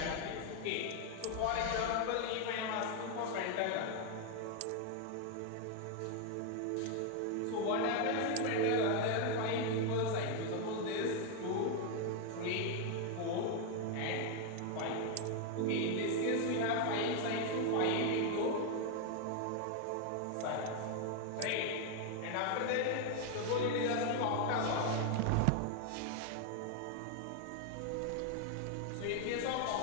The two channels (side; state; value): both; different; correlation 0.01